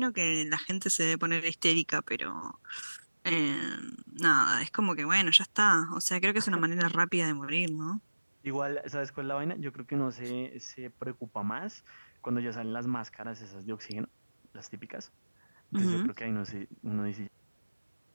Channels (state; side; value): inverted; both; correlation -1.00